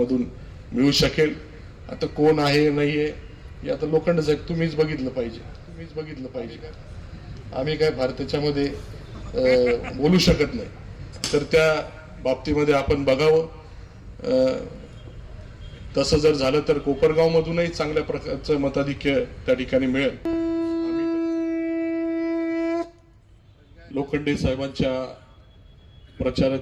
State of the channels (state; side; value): identical; both; correlation 1.00